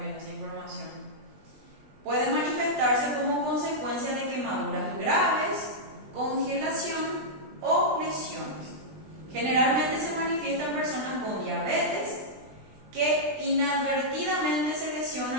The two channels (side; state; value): left; late; 20 ms